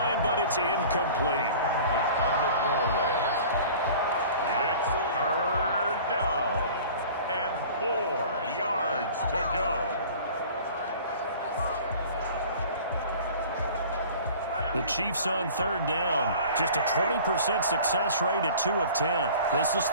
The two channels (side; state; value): both; inverted; correlation -0.44